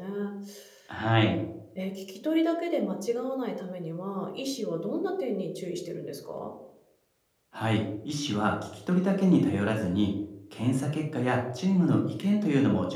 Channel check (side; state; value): both; identical; correlation 1.00